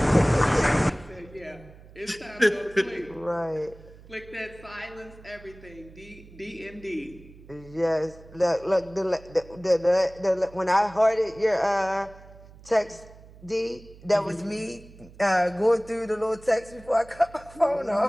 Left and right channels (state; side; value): noise; right; hum, 21 dB below the sound